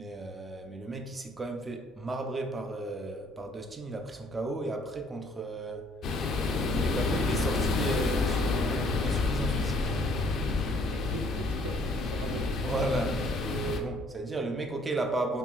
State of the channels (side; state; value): both; normal; correlation 0.61